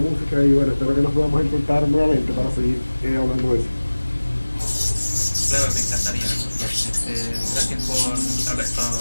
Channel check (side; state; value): both; inverted; correlation -1.00